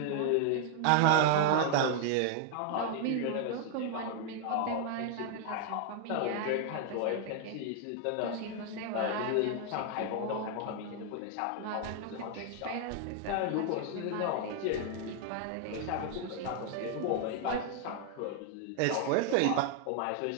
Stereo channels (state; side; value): different; both; correlation 0.00